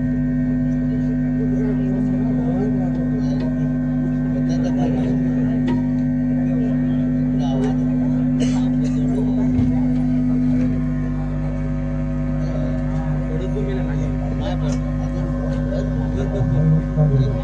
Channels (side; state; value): both; identical; correlation 1.00